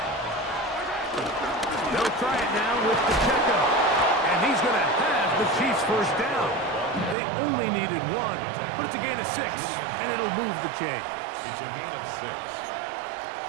They'll try it now with Pacheco. And he's going to have the Chiefs' 1st down. They only needed 1, but it's a gain of 6, and it'll move the chains. It's a gain of 6.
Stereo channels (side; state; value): left; drops out; at 7.2 s